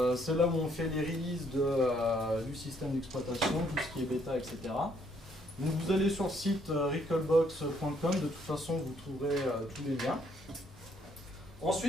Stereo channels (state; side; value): normal; both; correlation 0.68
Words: là où on fait les releases du système d'exploitation, tout ce qui est bêta, etc. Donc vous allez sur le site recalbox.com, de toute façon vous trouverez tous les liens.